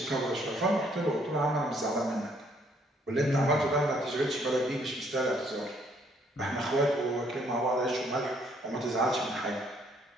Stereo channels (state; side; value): normal; both; correlation 0.66